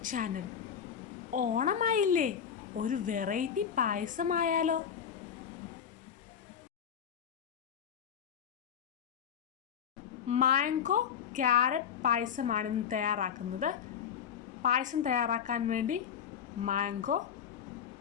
channel. ഓണമായില്ലേ, ഒരു variety പായസമായാലോ? Mango carrot പായസമാണ് ഇന്ന് തയ്യാറാക്കുന്നത്. പായസം തയ്യാറാക്കാൻ വേണ്ടി മാംഗോ,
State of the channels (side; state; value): right; quieter; 8.2 dB